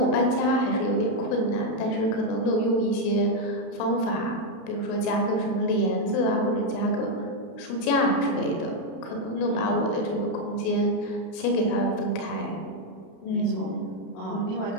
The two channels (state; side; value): late; right; 32 ms